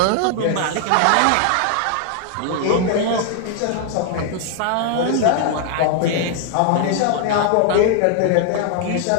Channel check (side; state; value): both; different; correlation 0.00